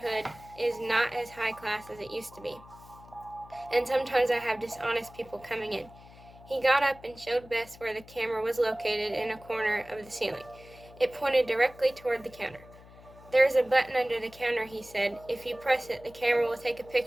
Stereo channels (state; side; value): noise; left; hum, 21 dB below the sound